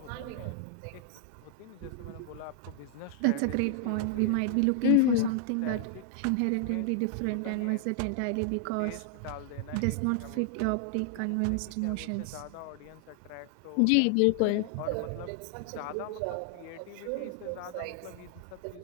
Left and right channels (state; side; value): different; both; correlation 0.00